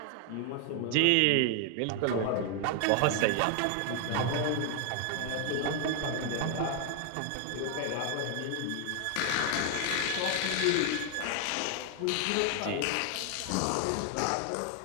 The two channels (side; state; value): both; different; correlation 0.00